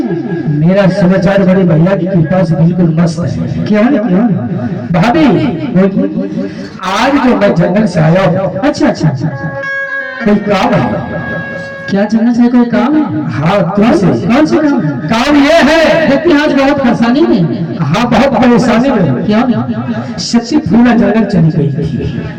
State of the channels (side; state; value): both; identical; correlation 1.00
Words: मेरा समाचार बड़े भैया की कृपा से बिल्कुल मस्त है। क्यों क्यों? भाभी आज जो मैं जंगल से आया हूँ, अच्छा अच्छा अच्छा, कोई काम है? क्या जंगल से कोई काम है? हाँ तुमसे। कौन सा काम है? काम ये है, देखते हैं आज बहुत परेशानी में। हाँ बहुत परेशानी में। क्या? सच्ची फूला जंगल चली गई थी।